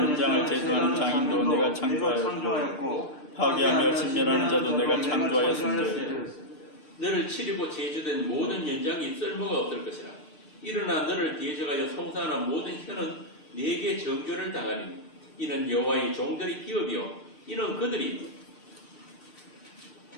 현장을 제조하는 장인도 내가 창조하였고 파괴하며 진멸하는 자도 내가 창조하였은즉 너를 치르고 제조된 모든 연장이 쓸모가 없을 것이라. 일어나 너를 대적하여 송사하는 모든 혀는 네게 정죄를 당하리니 이는 여호와의 종들의 기업이요 이는 그들이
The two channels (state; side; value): late; right; 6.6 ms